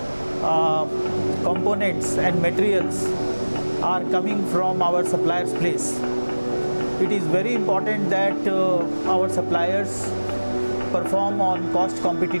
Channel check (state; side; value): inverted; both; correlation -1.00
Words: components and materials are coming from our suppliers' place. It is very important that our suppliers perform on cost